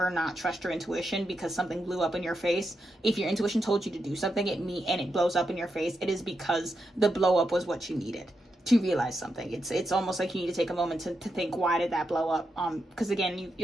not trust your intuition because something blew up in your face. If your intuition told you to do something and it blows up in your face, it is because the blow up was what you needed to realize something. It's almost like you need to take a moment to think, why did that blow up? Because again,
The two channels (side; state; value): both; normal; correlation 0.85